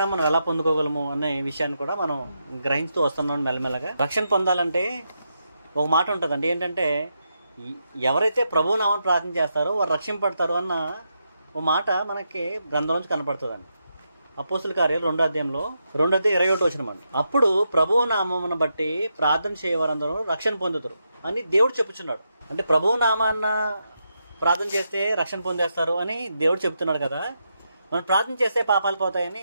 మనం ఎలా పొందుకోగలము అనే విషయాన్ని కూడా మనం గ్రహిస్తూ వస్తున్నాం మెల్లమెల్లగా. రక్షణ పొందాలంటే ఒక మాట ఉంటుందండి, ఏంటంటే ఎవరైతే ప్రభువు నామమున ప్రార్థన చేస్తారో వారు రక్షింపడతారు అన్న ఒక మాట మనకి గ్రంథంలోంచి కనపడుతుందండి. అపోస్తుల కార్యాలు 2వ అధ్యాయంలో 2:21 అండి. అప్పుడు ప్రభువు నామమును బట్టి ప్రార్థన చేయవారందరూ రక్షణ పొందుతారు అని దేవుడు చెప్పుచున్నాడు. అంటే ప్రభువు నామాన్న ప్రార్థన చేస్తే రక్షణ పొందేస్తారు అని దేవుడు చెప్తున్నాడు కదా. మనం ప్రార్థన చేస్తే పాపాలు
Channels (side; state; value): both; inverted; correlation -0.84